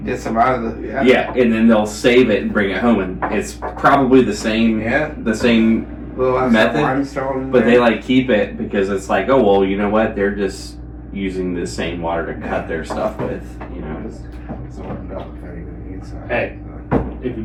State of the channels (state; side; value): identical; both; correlation 1.00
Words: Get some out of the. Yeah. yeah, and then they'll save it and bring it home, and it's probably the same. Yeah. The same Little method, limestone but they there. like keep it because it's like, oh well, you know what? They're just using the same water to cut their stuff with, you know. It's warmed up if anybody needs some. Hey. If you